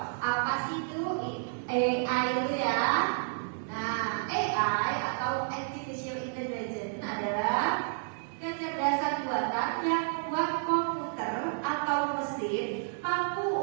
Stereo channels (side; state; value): left; silent; 57 dB below the other